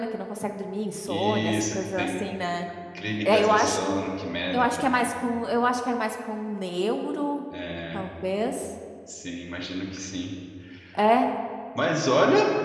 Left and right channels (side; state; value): both; identical; correlation 1.00